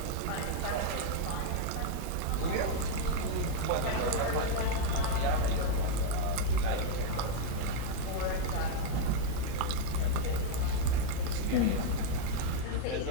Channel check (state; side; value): different; both; correlation -0.01